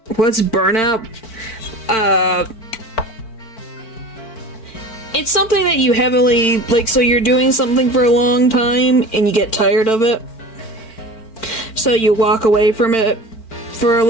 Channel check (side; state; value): right; late; 4.5 ms